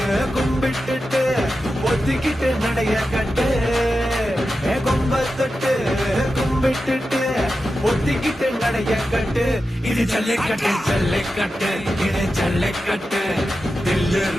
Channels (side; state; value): both; normal; correlation 0.91